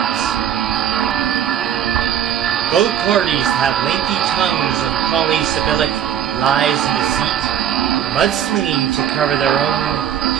Both parties have lengthy tongues of polysyllabic lies and deceit, mudslinging to cover their own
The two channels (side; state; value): left; quieter; 9.6 dB